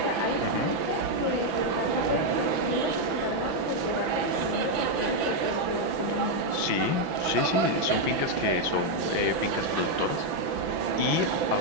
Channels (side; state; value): left; late; 6.0 ms